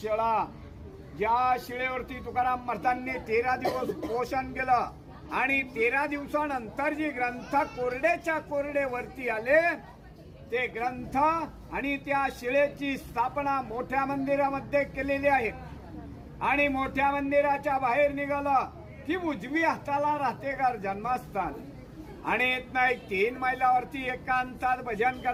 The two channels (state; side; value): identical; both; correlation 1.00